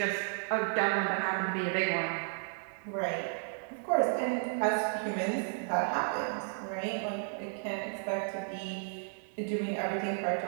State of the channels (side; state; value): left; silent; 56 dB below the other